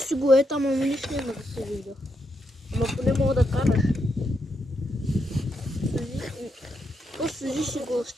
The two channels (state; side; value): normal; both; correlation 0.81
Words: го е там, ама нищо няма да се вижда. Ама поне мога да караш. Просто сложи си го с